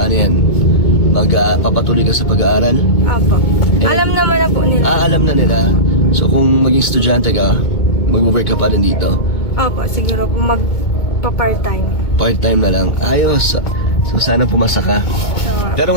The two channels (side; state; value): right; late; 2.2 ms